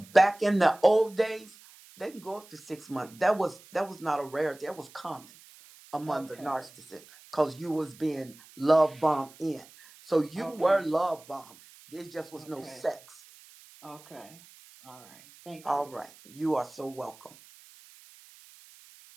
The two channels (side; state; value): right; noise; hiss, 23 dB below the sound